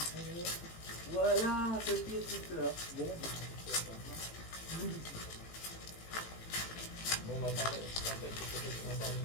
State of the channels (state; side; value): late; right; 18 ms